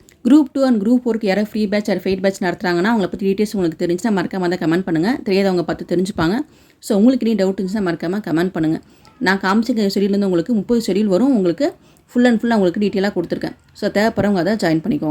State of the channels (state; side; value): identical; both; correlation 1.00